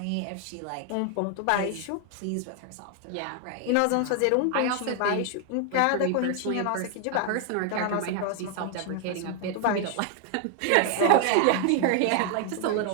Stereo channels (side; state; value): both; different; correlation 0.00